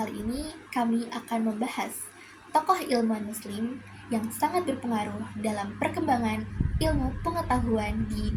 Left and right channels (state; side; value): identical; both; correlation 1.00